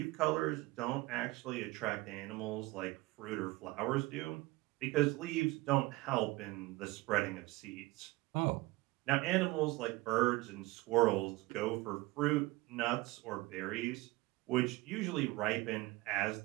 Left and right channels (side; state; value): left; quieter; 20.8 dB